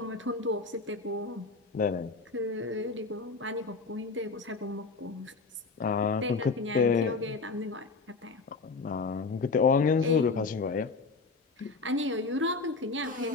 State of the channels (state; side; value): quieter; right; 4.1 dB